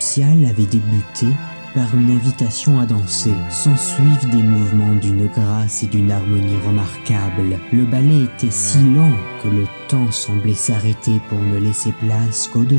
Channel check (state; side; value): inverted; both; correlation -1.00